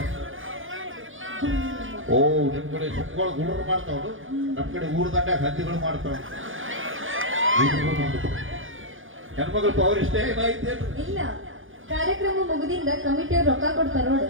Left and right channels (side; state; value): left; late; 0.58 ms